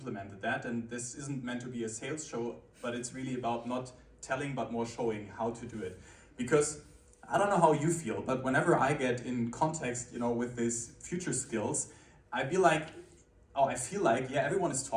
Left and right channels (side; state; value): both; identical; correlation 1.00